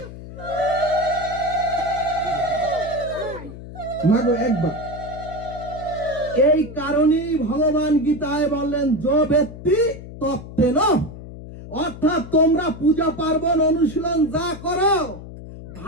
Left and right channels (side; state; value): left; noise; hum, 13 dB below the sound